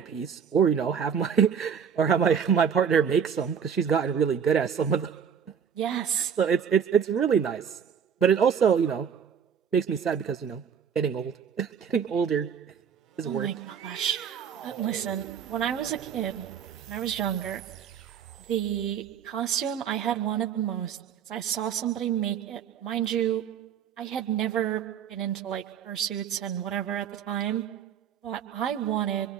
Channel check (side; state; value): left; quieter; 7.6 dB